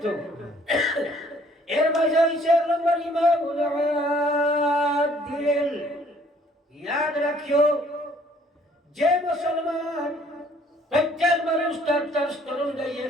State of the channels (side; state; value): both; normal; correlation 0.60